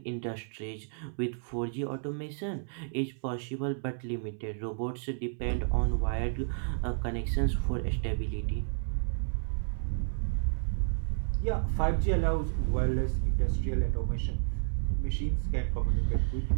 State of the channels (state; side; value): silent; left; 57 dB below the other